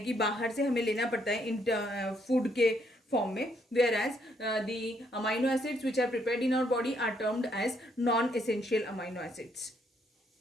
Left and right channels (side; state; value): both; normal; correlation 0.71